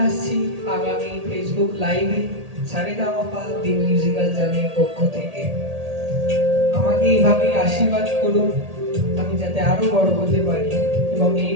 আসছি আগামী ফেসবুক লাইভে সারেগামাপা দি মিউজিক্যাল জার্নির পক্ষ থেকে। আমাকে এইভাবেই আশীর্বাদ করুন, আমি যাতে আরো বড় হতে পারি এবং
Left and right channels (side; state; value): left; late; 1.8 ms